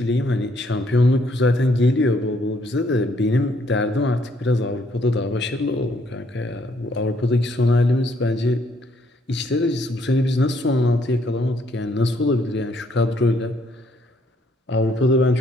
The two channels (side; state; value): both; normal; correlation 0.69